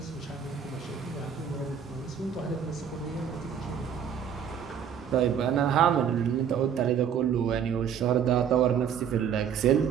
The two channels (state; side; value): quieter; left; 8.1 dB